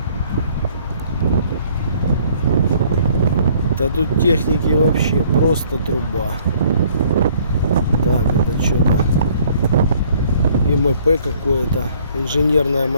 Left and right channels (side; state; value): both; inverted; correlation -0.59